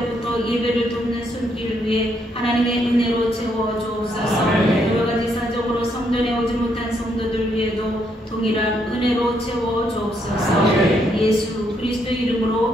예배를 돕는 손길을 위해 하나님의 은혜로 채워 주옵소서. 여러가지 사정으로 성전에 오지 못한 성도들 위에도 동일한 은혜로 채워 주옵소서. 예수 그리스도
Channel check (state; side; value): normal; both; correlation 0.74